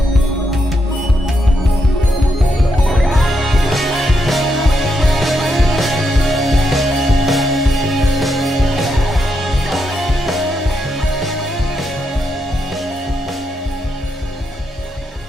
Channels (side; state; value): both; normal; correlation 0.81